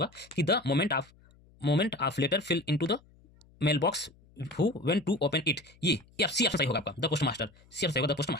कि the moment of letter fell into the mail box who went to open it. ये सी ऑप्शन सही होगा आपका, the post master. C option सही होगा, द पोस्ट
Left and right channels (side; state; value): left; noise; hum, 28 dB below the sound